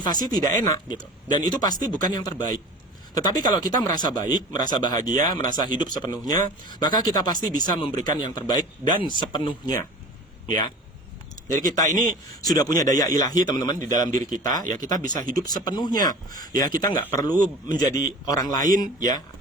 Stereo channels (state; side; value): normal; both; correlation 0.39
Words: tidak enak, gitu. Dan itu pasti bukan yang terbaik. Tetapi kalau kita merasa baik, merasa bahagia, merasa hidup sepenuhnya, maka kita pasti bisa memberikan yang terbaik dan sepenuhnya. Ya, jadi kita ini sudah punya daya ilahi, teman-teman, di dalam diri kita. Ya, kita bisa hidup sepenuhnya. Ya, kita nggak perlu menjadi orang lain, ya,